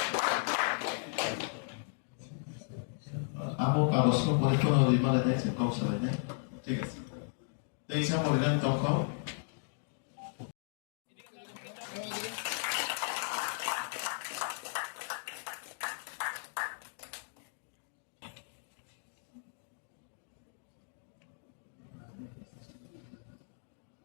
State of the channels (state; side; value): silent; right; digital silence